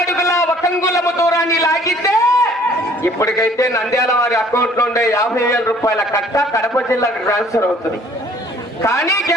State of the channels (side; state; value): both; normal; correlation 0.56